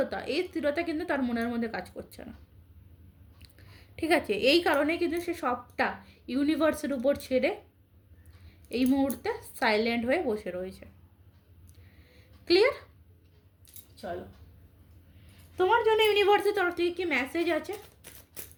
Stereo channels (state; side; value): identical; both; correlation 1.00